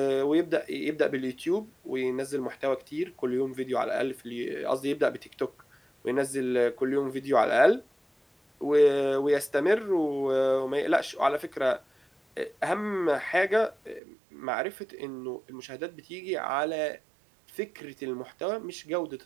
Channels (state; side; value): drops out; left; at 14.0 s